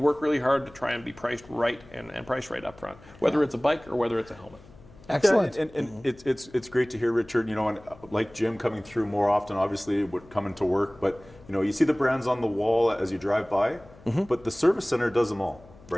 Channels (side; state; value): left; noise; hum, 22 dB below the sound